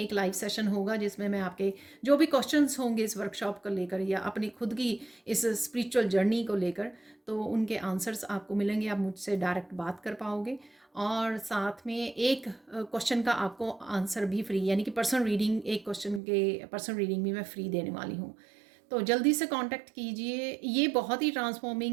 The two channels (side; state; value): left; drops out; at 16.2 s